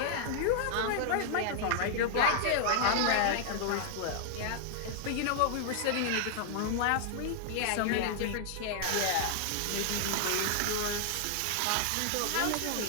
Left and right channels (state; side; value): different; both; correlation 0.00